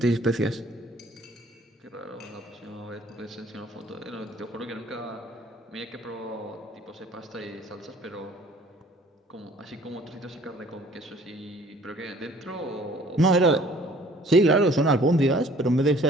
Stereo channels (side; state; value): both; normal; correlation 0.54